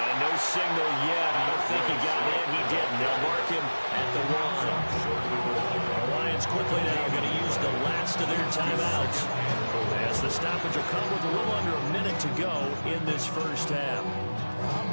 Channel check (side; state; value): both; inverted; correlation -1.00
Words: no signal yet. I don't think he got in. He didn't. They'll mark him at the 1. The Lions quickly now going to use the last of their timeouts as the stoppage will come with a little under a minute to go in this 1st half.